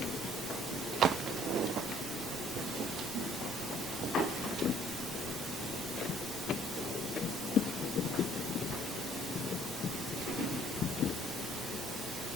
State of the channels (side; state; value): both; normal; correlation 0.59